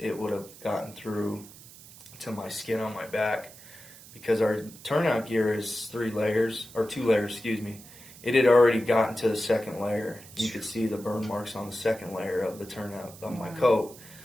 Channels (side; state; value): right; noise; hiss, 19 dB below the sound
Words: would have gotten through to my skin on my back. Because our turnout gear is 2 layers, It had already gotten to the second layer. You could see the burn marks on the second layer of the turnout on my coat.